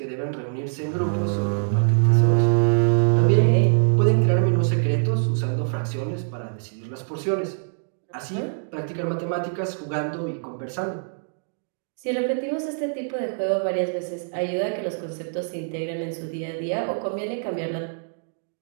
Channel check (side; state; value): left; silent; digital silence